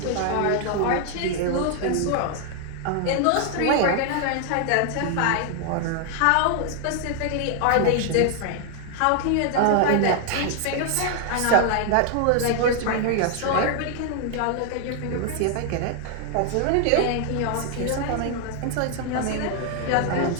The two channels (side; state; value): both; different; correlation 0.00